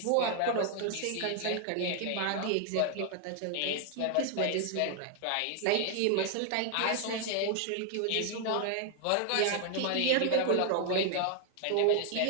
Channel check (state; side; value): different; both; correlation 0.00